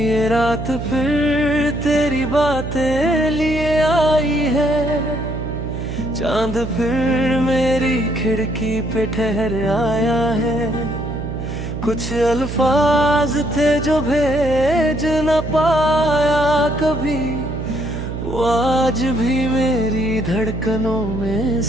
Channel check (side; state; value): right; noise; hum, 6 dB below the sound